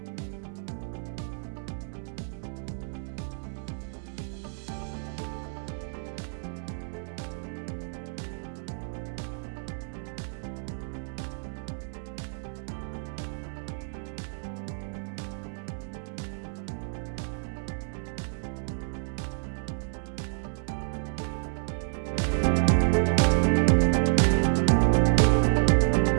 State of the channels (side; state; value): left; silent; 58 dB below the other